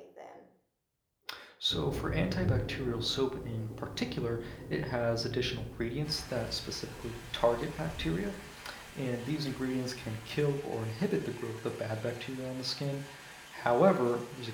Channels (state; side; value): identical; both; correlation 1.00